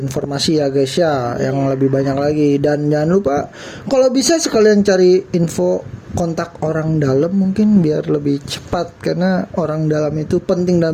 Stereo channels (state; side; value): identical; both; correlation 1.00